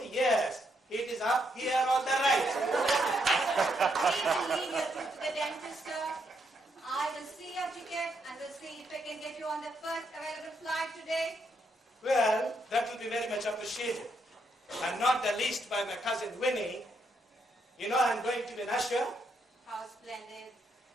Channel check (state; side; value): normal; both; correlation 0.77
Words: yes, it is up here on the right. We will leave your tooth to the dentist, sir. I will see your ticket and will see if I can get you on the first available flight today. Well, that will be very much appreciated. And not the least by my cousin Winnie. You know I'm going to be an usher. How splendid.